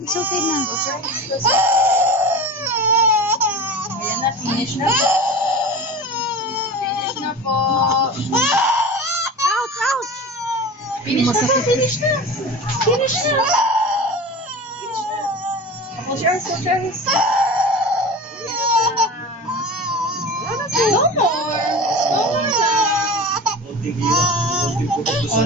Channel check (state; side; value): normal; both; correlation 0.33